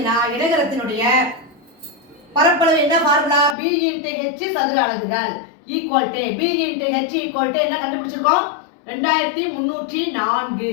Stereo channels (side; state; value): right; drops out; at 3.6 s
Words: இணைகரத்தினுடைய பரப்பளவு என்ன ஃபார்முலா? B × H சதுர அலகுகள் equal to B × H equal to என்ன கண்டுபிடிச்சிருக்கோம்? 2304.